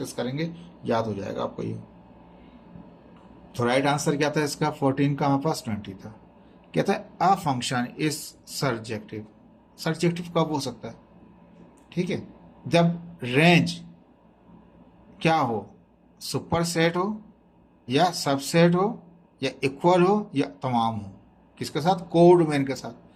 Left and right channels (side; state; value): both; identical; correlation 1.00